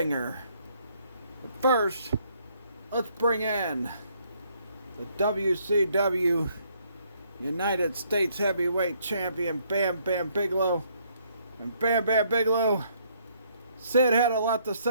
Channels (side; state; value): both; inverted; correlation -0.68